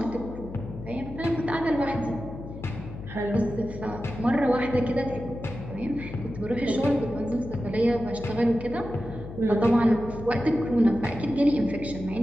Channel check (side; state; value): left; noise; hum, 11 dB below the sound